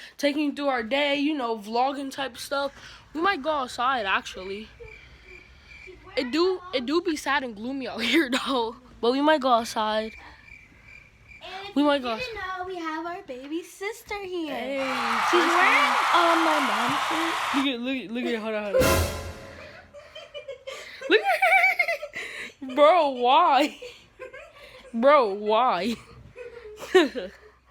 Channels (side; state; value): both; identical; correlation 1.00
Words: taking you through our day, you know, vlogging type stuff. We might go outside, actually. It do be sad and gloomy out here, though. But we might go outside. And we might go. You know, we have our baby sister here. Hey, she's wearing my mom's shirt. Look at, hold on. Look at her. Bro, why? Bro, why? It's